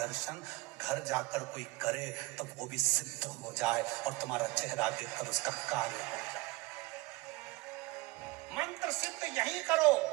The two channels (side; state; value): left; quieter; 22.2 dB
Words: घर जाकर कोई करे तो वो भी सिद्ध हो जाए और तुम्हारा चेहरा देखकर उसका कार्य हो जाए। मंत्र सिद्ध यही करो,